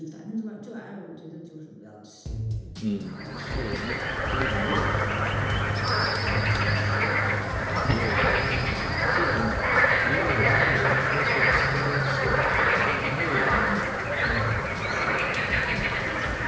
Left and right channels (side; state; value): both; identical; correlation 1.00